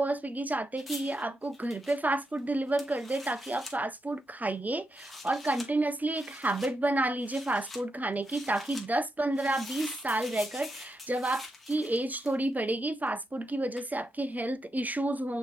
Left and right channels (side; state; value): both; normal; correlation 0.84